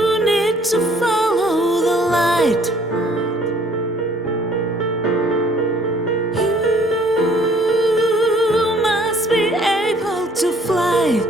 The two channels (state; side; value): normal; both; correlation 0.59